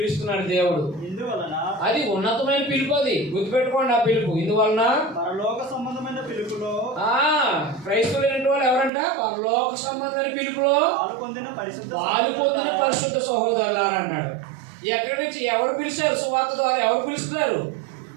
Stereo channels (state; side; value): drops out; left; at 8.9 s